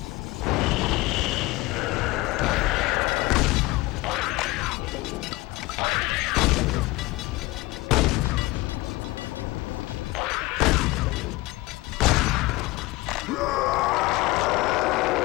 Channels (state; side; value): quieter; right; 20.8 dB